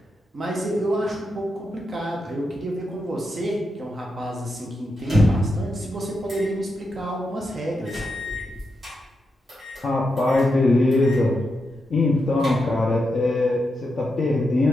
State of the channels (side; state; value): both; normal; correlation 0.86